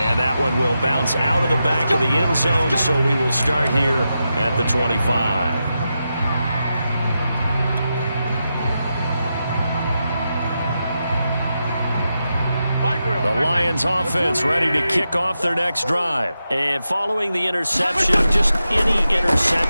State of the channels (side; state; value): both; inverted; correlation -0.88